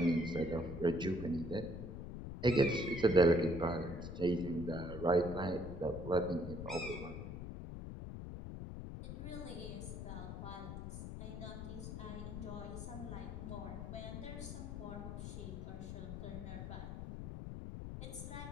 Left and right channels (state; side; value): noise; left; rumble, 7 dB below the sound